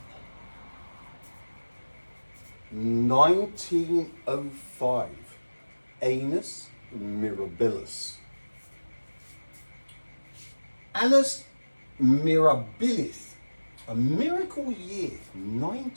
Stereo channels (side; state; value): both; inverted; correlation -1.00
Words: 1905. Annus mirabilis. Annus mirabilis. A miracle year,